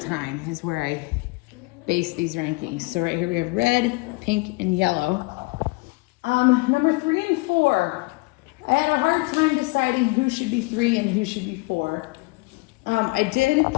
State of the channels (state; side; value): quieter; right; 26.2 dB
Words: is where I base these rankings. So right here we have red, pink, and yellow. #3 and 4. I had a hard time deciding who should be 3 and who should be 4. I did